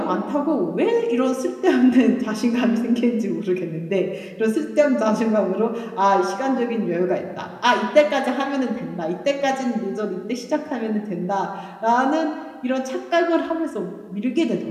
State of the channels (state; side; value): identical; both; correlation 1.00